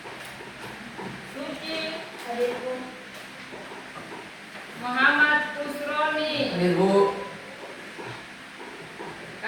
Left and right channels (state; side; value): identical; both; correlation 1.00